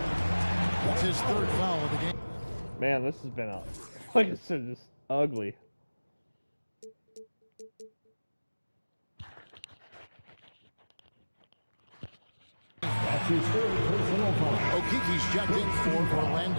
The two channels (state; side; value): inverted; both; correlation -1.00